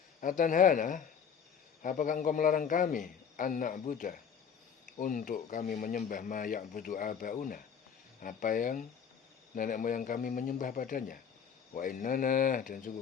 Atanhana, apakah engkau melarang kami, an na'budah, untuk kami menyembah ma ya'budu abauna, apa yang nenek moyang kami menyembah padanya. Wa innana, dan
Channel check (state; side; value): quieter; right; 7.3 dB